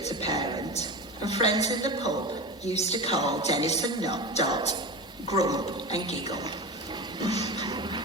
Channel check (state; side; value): normal; both; correlation 0.26